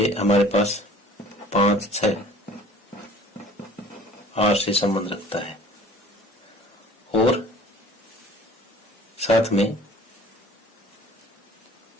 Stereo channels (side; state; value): both; normal; correlation 0.48